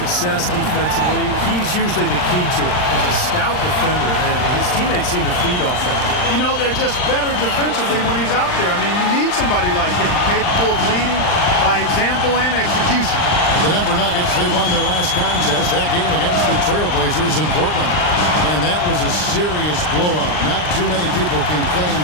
defensively, he's usually the key to it. He's a stout defender, and his teammates seem to feed off that. You know, they're just better defensively when he's out there. I mean, you need somebody like him, capable of leading by example and execution. The Denver Nuggets, they won their last contest, that game against the Trailblazers in Portland. And that was a serious blowout. Not too many people can claim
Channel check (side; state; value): right; late; 39 ms